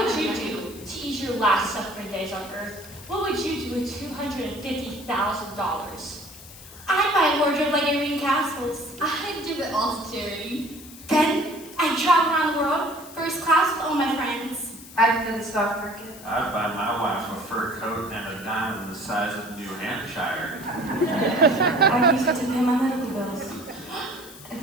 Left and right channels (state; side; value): noise; left; hiss, 17 dB below the sound